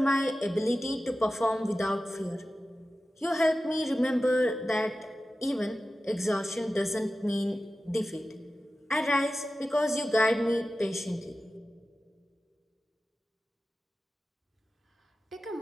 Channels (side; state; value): both; normal; correlation 0.94